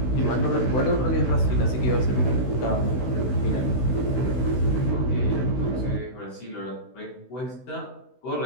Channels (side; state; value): right; late; 16 ms